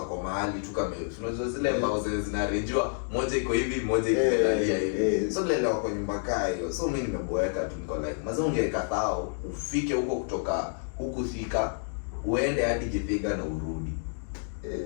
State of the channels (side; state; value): right; silent; digital silence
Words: mahali tu kama unajua zile mbao zinarejewa moja iko hivi moja ikelalia hivi. So lelewa kwa nyumba kaa hiyo. So mimi nimeboeka tu niko like mazao ungekatao ufike huko kutoka huku Thika uende hadi Githega na urudi.